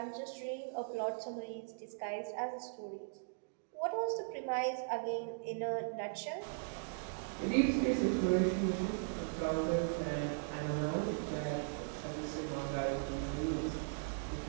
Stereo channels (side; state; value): left; silent; digital silence